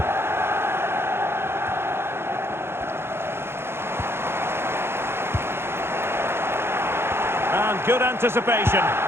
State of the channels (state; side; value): late; left; 0.12 ms